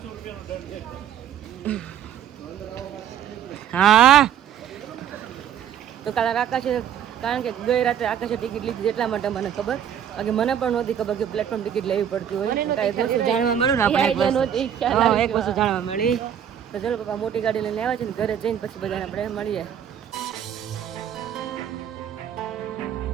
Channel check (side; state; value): left; quieter; 9.4 dB